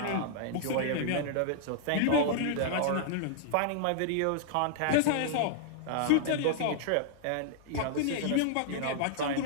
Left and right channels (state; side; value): different; both; correlation -0.01